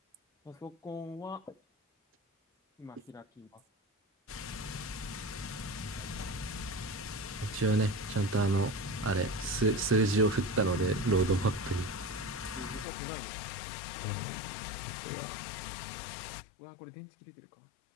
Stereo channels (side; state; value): right; drops out; at 12.9 s